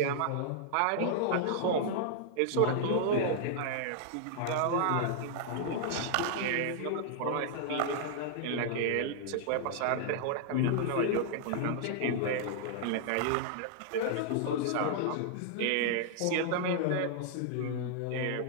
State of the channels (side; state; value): both; different; correlation -0.01